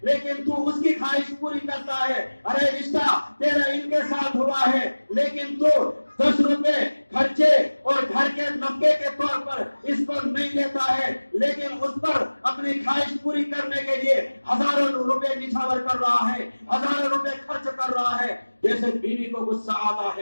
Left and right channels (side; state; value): both; inverted; correlation -1.00